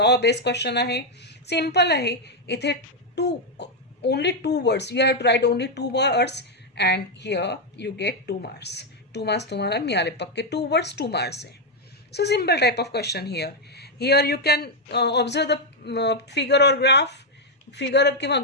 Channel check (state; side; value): normal; both; correlation 0.01